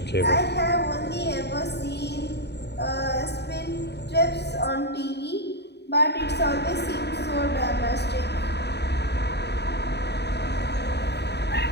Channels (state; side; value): late; right; 0.49 ms